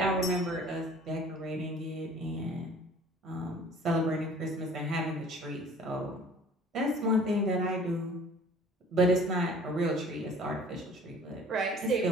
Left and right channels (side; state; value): both; normal; correlation 0.49